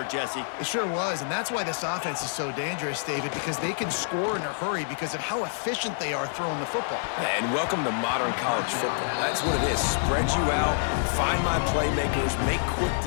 Jesse. It sure was, and that's why this offense is so dangerous, David, because they can score in a hurry because of how efficient they are throwing the football. And welcome to modern college football. That's what it is. Spread you out, find my playmakers, make quick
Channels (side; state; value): right; silent; 60 dB below the other